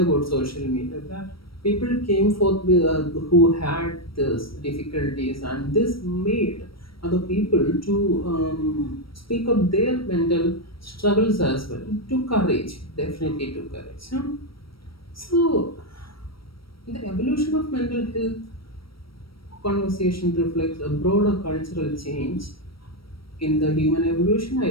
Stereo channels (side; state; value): right; late; 0.75 ms